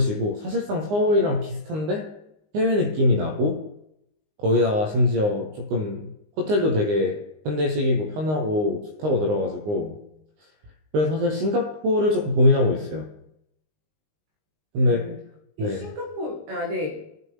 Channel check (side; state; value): left; late; 19 ms